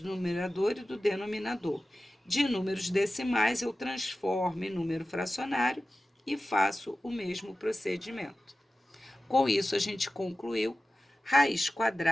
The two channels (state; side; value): normal; both; correlation 0.95